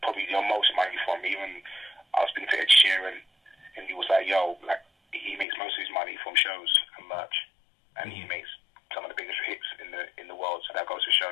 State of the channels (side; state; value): right; drops out; at 5.5 s